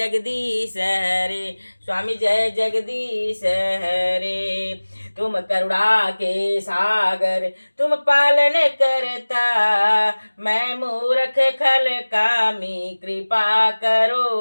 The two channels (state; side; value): inverted; both; correlation -1.00